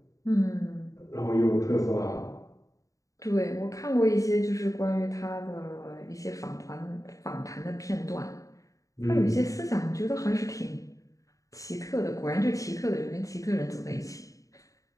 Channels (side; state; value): right; late; 0.16 ms